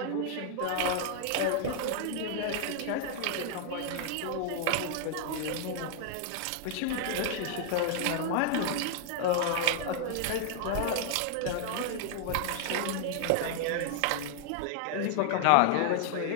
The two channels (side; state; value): both; different; correlation 0.00